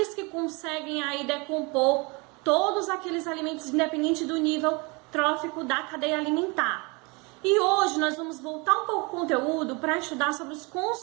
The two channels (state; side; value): quieter; left; 28.4 dB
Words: que conseguem aí decompor todos aqueles alimentos, independente do nível trófico da cadeia alimentar. E hoje nós vamos voltar um pouco o conteúdo para estudar sobre os